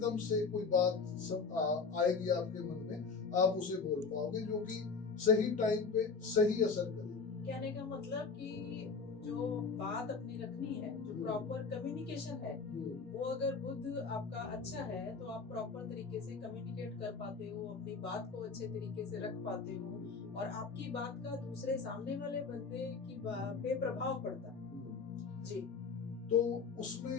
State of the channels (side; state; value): right; quieter; 5.0 dB